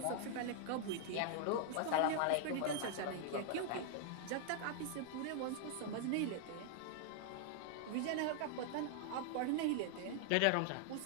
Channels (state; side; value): different; both; correlation 0.00